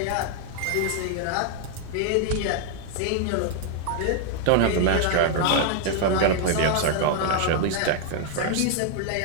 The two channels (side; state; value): both; different; correlation 0.00